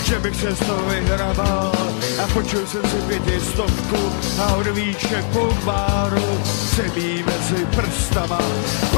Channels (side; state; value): right; silent; digital silence